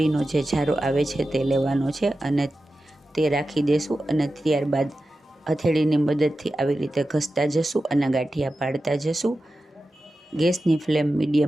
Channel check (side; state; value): both; normal; correlation 0.93